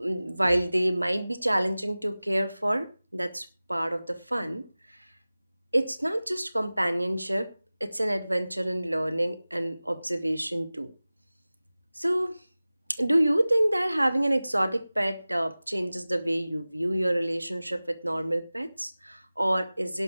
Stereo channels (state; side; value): inverted; both; correlation -0.98